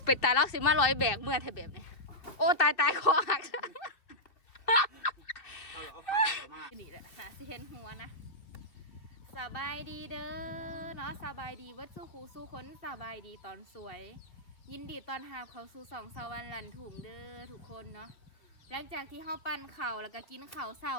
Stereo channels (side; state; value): right; late; 2.5 ms